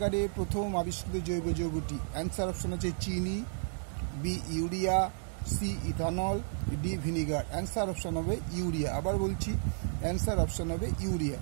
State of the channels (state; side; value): silent; left; digital silence